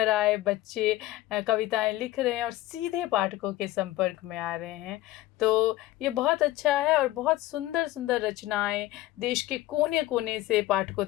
आए बच्चे कविताएँ लिख रहे हैं और सीधे पाठकों के संपर्क में आ रहे हैं। तो ये बहुत अच्छा है और बहुत सुंदर-सुंदर रचनाएँ देश के कोने-कोने से पाठकों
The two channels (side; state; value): right; quieter; 16.1 dB